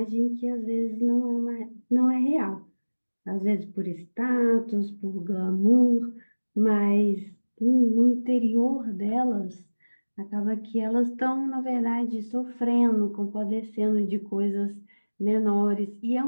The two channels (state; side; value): inverted; both; correlation -1.00